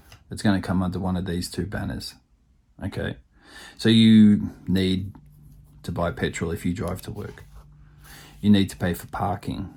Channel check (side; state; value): both; identical; correlation 1.00